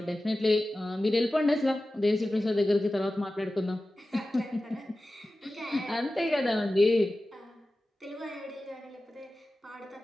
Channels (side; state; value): both; normal; correlation 0.95